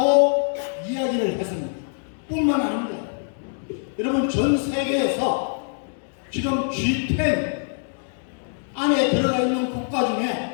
이야기를 했습니다. 뿐만 아닙니다. 여러분 전 세계에서 지금 G10 안에 들어가 있는 국가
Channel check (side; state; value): right; silent; digital silence